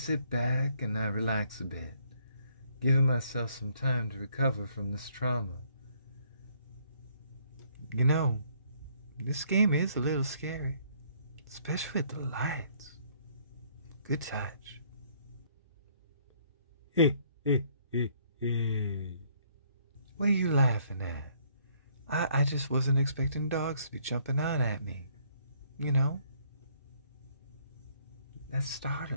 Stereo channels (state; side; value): inverted; both; correlation -0.65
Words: back and I relax a bit, giving myself some time to recover from this trauma. You know, this game is a little scary, especially with the lights. Good touch. Hey, hey, hey, hey. What are you laughing at? I just wasn't expecting dogs to be jumping out at me. You know? That's